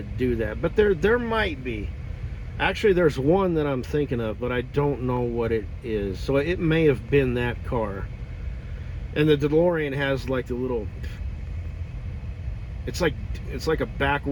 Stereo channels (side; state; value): both; identical; correlation 1.00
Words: do that, but there might be. Actually, there's one that I'm thinking of, but I don't know what it is. So it may have been that car. And the DeLorean has like the little, it's like a